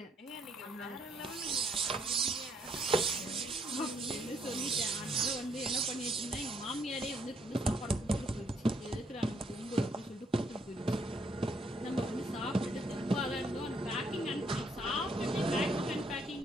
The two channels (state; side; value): normal; both; correlation 0.70